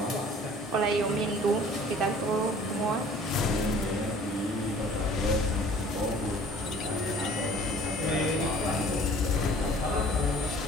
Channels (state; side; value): normal; both; correlation 0.50